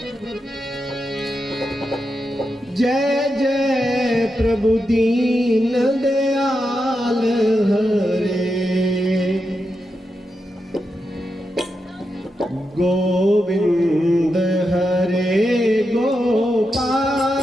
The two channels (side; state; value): both; normal; correlation 0.87